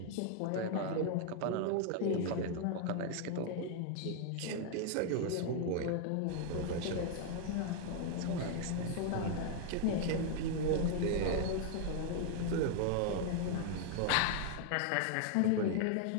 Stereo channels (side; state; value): both; different; correlation 0.00